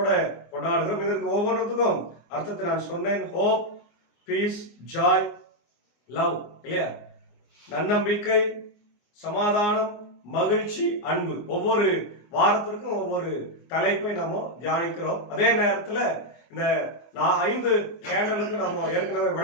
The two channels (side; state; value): right; late; 24 ms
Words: கொண்டாடுகிறோம். இதற்கு ஒவ்வொன்றுத்துக்கும் அர்த்தத்தை நான் சொன்னேன். ஹோப், பீஸ், ஜாய், லவ், இல்லையா? நன்னம்பிக்கை, சமாதானம், மகிழ்ச்சி, அன்பு. ஒவ்வொரு வாரத்திற்கும் ஒவ்வொரு தலைப்பை நம்ம தியானிக்கிறோம். அதே நேரத்துல இந்த 5 கேண்டலுக்கு நம்ம ஏற்கனவே